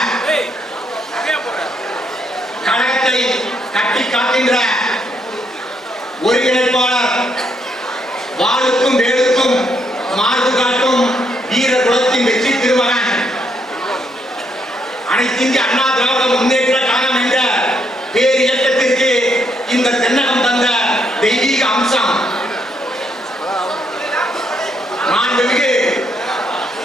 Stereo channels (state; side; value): normal; both; correlation 0.75